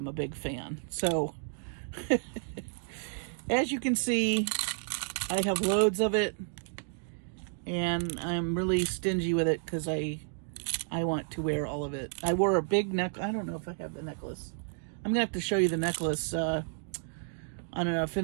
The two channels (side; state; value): left; silent; digital silence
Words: a big fan. So, as you can see, I have loads of it, and I'm really stingy with it because I want to wear all of it. I wore a big necklace. I don't know if I have the necklace. I'm going to have to show you the necklace on a